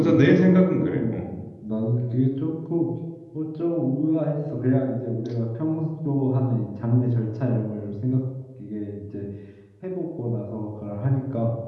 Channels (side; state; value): both; identical; correlation 1.00